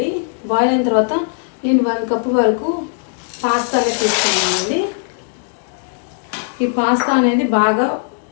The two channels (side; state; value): right; silent; digital silence